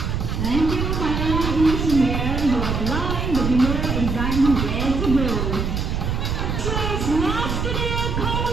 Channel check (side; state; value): right; noise; rumble, 1 dB below the sound